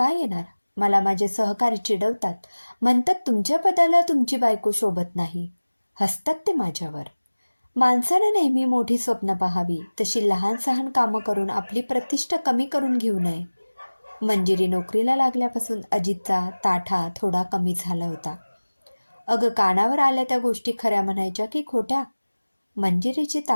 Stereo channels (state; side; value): inverted; both; correlation -1.00